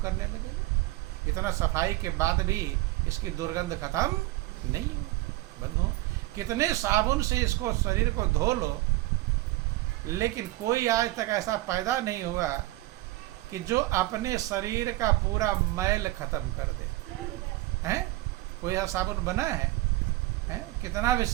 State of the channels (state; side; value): quieter; left; 18.3 dB